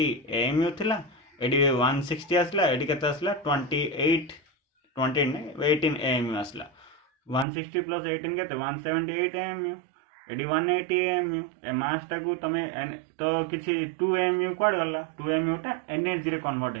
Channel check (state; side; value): drops out; left; at 7.5 s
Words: AMU थिला एडी 160 आसला एडी केते आसला 18 AMU आसला 160 प्लस 18 केते 178 AMU एडी 180 AMU ए मास टा को तमे तो किछि 2 AMU क्वाड गला 2 AMU टा एनर्जी रे कन्वर्ट